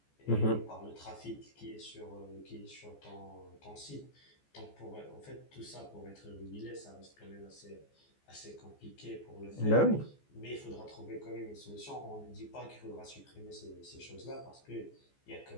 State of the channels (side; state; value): right; late; 14 ms